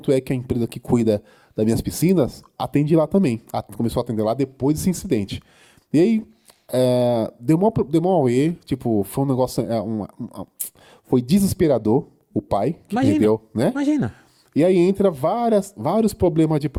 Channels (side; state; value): both; identical; correlation 1.00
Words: a empresa que cuida das minhas piscinas atende lá também. Começou a atender lá depois desse incidente. E aí, deu mó auê, tipo, foi um negócio, foi desesperador o pai que Imagina, perdeu, né? Imagina. E aí entra vários problemas de